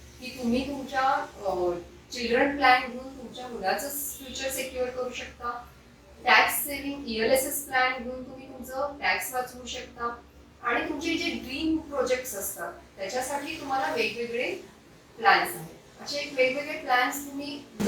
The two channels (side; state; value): both; identical; correlation 1.00